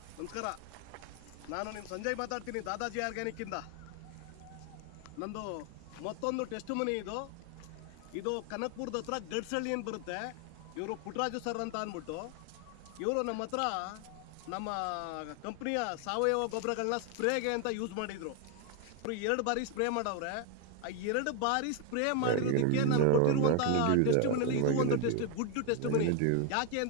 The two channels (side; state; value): both; different; correlation 0.01